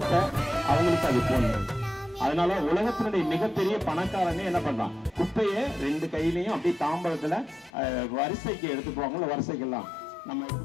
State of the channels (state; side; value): drops out; right; at 7.7 s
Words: அவங்களுக்கு அது போடணும். அதனால உலகத்தினுடைய மிகப்பெரிய பணக்காரனே என்ன பண்றான்? குப்பையை 2 கையிலையும் அப்படியே தாம்பரத்துல வரிசைக்கு எடுத்து போவாங்கல்ல, வரிசைக்கெல்லாம் நம்ம